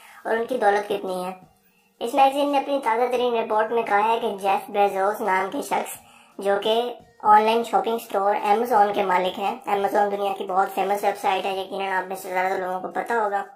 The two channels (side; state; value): both; identical; correlation 1.00